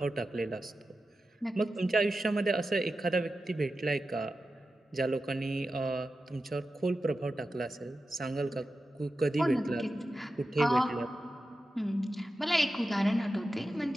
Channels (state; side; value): normal; both; correlation 0.92